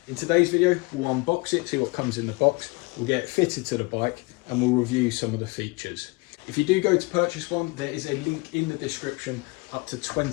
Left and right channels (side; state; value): right; quieter; 26.4 dB